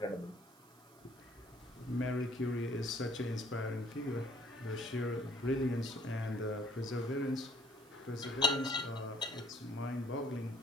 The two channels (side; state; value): right; noise; hiss, 26 dB below the sound